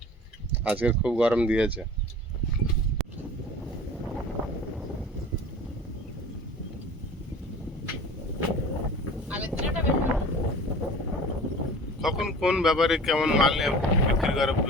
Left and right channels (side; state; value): both; normal; correlation 0.41